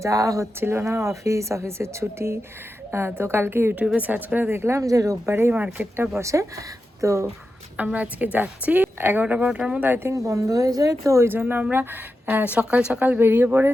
যাওয়া হচ্ছিল না, অফিসের ছুটি। তো কালকে ইউটিউবে সার্চ করে দেখলাম যে রোববারেই মার্কেটটা বসে। তো আমরা আজকে যাচ্ছি, 11টা-12টার মধ্যে আই থিঙ্ক বন্ধ হয়ে যায়। তো ওই জন্য আমরা সকাল সকাল বেরিয়ে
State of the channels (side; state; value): both; normal; correlation 0.90